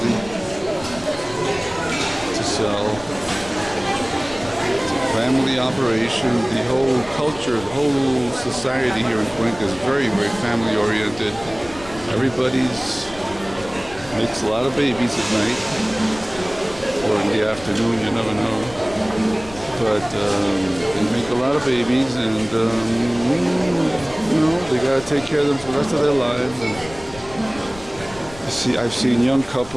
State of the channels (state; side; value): noise; left; rumble, 18 dB below the sound